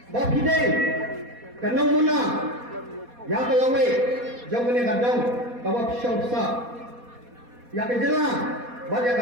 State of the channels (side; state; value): left; late; 4.2 ms